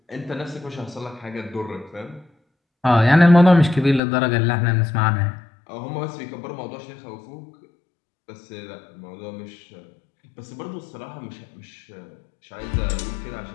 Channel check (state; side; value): drops out; right; at 4.0 s